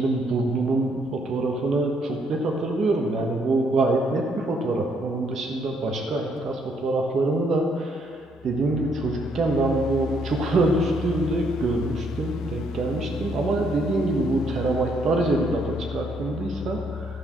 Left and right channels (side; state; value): both; normal; correlation 0.71